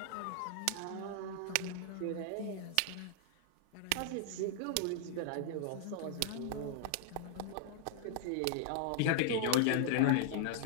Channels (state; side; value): different; both; correlation -0.01